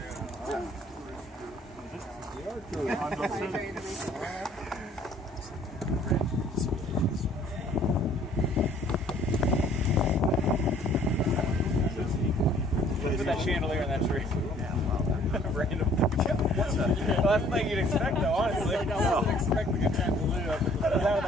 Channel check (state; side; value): normal; both; correlation 0.58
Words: Put that chandelier in that tree. Random. What's that? Well, that's the thing you'd expect, though, honestly. I wasn't expecting a chandelier out of